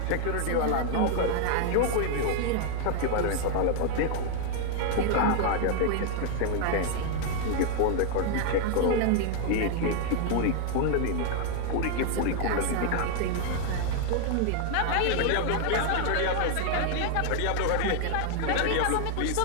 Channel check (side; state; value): both; different; correlation 0.00